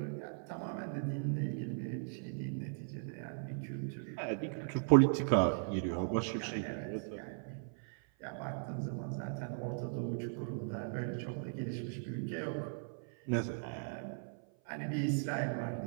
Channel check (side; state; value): left; silent; 53 dB below the other